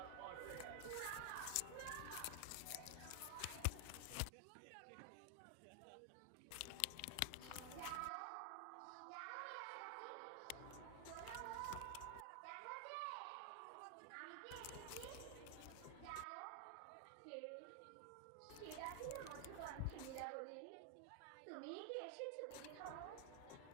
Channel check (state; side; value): different; both; correlation 0.00